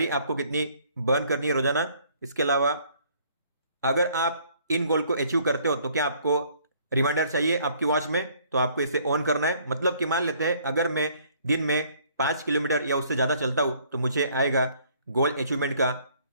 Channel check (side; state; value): both; inverted; correlation -0.61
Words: आपको कितनी बर्न करनी है रोजाना। इसके अलावा अगर आप इन गोल को अचीव करते हो तो क्या आपको रिमाइंडर चाहिए आपकी वॉच में, तो आपको इसे ऑन करना है। मतलब कि मान लेते हैं अगर मैं दिन में 5 किलोमीटर या उससे ज्यादा चलता हूं तो मुझे आएगा गोल अचीवमेंट का